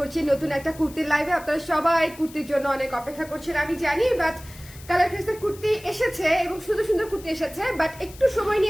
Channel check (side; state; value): left; noise; hiss, 20 dB below the sound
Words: নতুন একটা কুর্তির লাইভে। আপনারা সবাই কুর্তির জন্য অনেক অপেক্ষা করছেন আমি জানি, বাট কালার ক্রেসের কুর্তি এসেছে এবং শুধু সুন্দর কুর্তি এসেছে, বাট একটু সময়